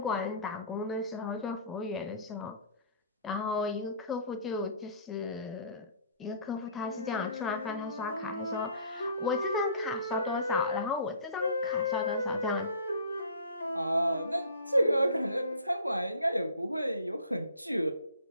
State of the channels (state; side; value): inverted; both; correlation -0.48